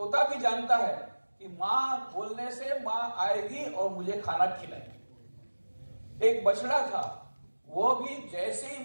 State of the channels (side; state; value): both; inverted; correlation -1.00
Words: भी जानता है कि माँ बोलने से माँ आएगी और मुझे खाना खिलाएगी। एक बछड़ा था, वो भी जैसे